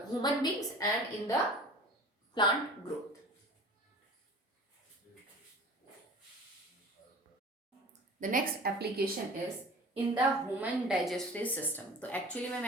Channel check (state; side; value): normal; both; correlation 0.42